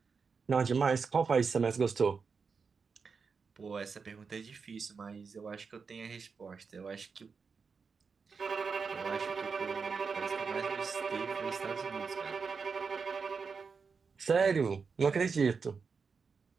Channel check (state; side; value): quieter; left; 5.3 dB